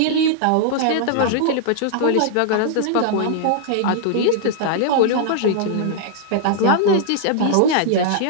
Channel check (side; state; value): both; different; correlation -0.01